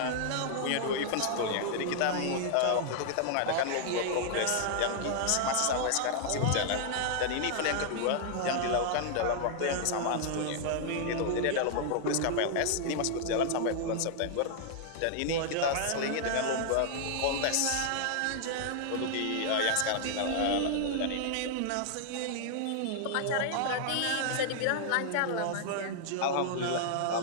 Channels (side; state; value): both; different; correlation -0.01